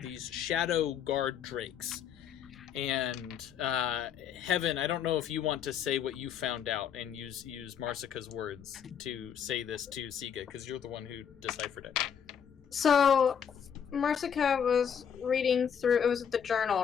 shadow guard drakes. And Heaven, I don't know if you want to say what you found out and use Marsica's words to say this to Sige, because you're the one who deciphered it. So, Marsica was reading through. It was the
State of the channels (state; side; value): quieter; right; 8.1 dB